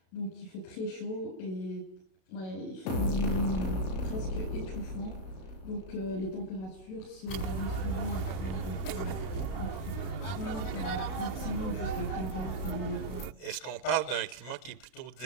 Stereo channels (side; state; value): right; late; 32 ms